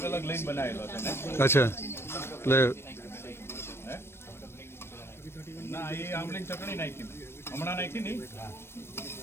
અલગ લઈને બનાવેલો છે ને. અચ્છા એટલે ના એ આમલીની ચટણી નાખી હમણાં નાખી નહીં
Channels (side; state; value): right; late; 0.12 ms